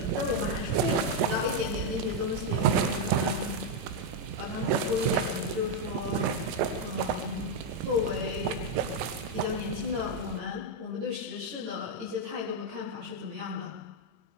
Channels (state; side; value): late; left; 18 ms